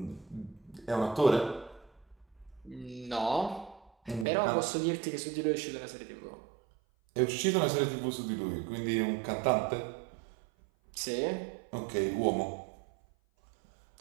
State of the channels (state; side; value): drops out; left; at 4.2 s